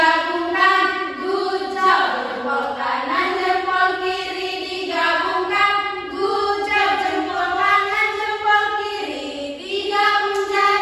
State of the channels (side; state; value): both; identical; correlation 1.00